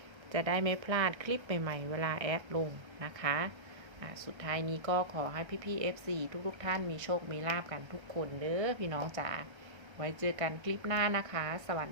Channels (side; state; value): left; late; 1.3 ms